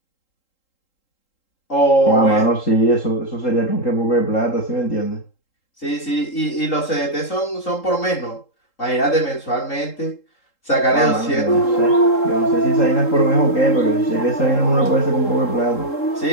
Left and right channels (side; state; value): right; late; 3.8 ms